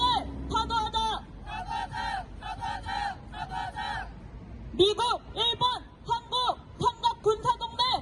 타도하자. 사과하자! 사과하자! 사과하자! 미국, 일본, 한국 삼각 군사동맹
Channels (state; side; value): identical; both; correlation 1.00